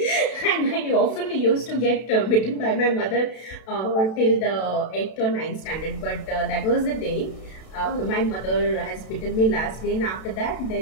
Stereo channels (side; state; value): right; late; 32 ms